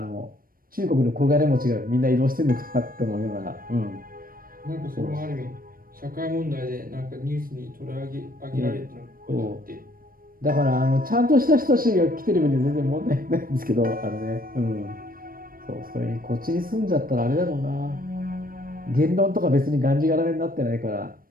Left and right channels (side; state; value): left; late; 0.41 ms